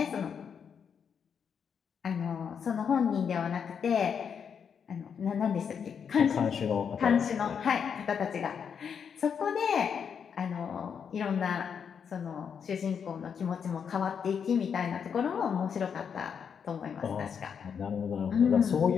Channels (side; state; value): right; quieter; 7.1 dB